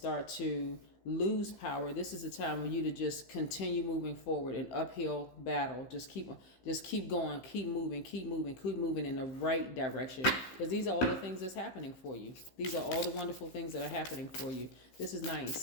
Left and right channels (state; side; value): late; right; 15 ms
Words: to lose power. This is the time for you to just continue moving forward, an uphill battle. Just keep going, keep moving in the right direction. Because these are all the things that's happening for you. These are all the wonderful things that are happening for you. This is